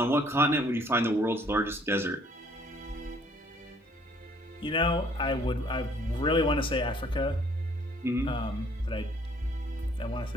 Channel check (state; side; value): normal; both; correlation 0.60